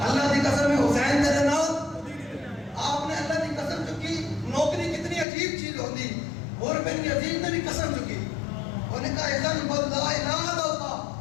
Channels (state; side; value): drops out; right; at 5.2 s